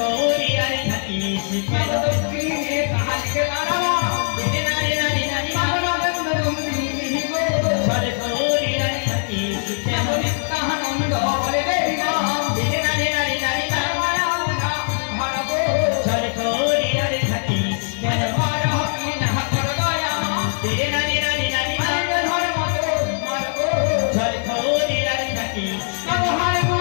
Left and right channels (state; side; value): silent; right; 65 dB below the other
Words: থাকি কেন দুর্গে কাহাকে নারা দেখে নারে নারে নারী সরে করিয়ার থাকি কেন নিত্যানন্দ বলে দেনা দেখে নারে নারে নারী না সরে করিয়ার থাকি